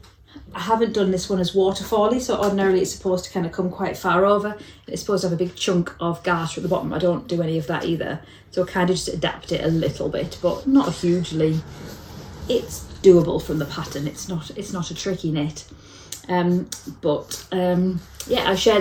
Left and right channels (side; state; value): both; identical; correlation 1.00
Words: I haven't done this one as waterfally, so ordinarily it's supposed to kind of come quite far over. It's supposed to have a big chunk of garter at the bottom. I don't do any of that either, so I kind of just adapt it a little bit, but not hugely. It's doable from the pattern. It's not a tricky knit. Yeah, I've